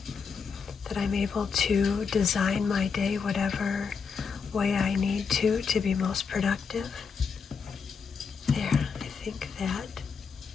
that I'm able to design my day whatever way I need to be most productive. There, I think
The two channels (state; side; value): quieter; right; 5.7 dB